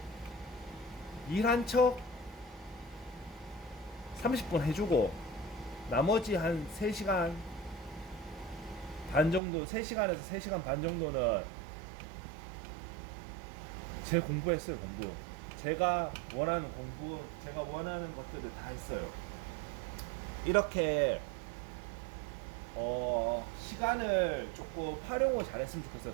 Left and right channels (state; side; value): drops out; left; at 9.4 s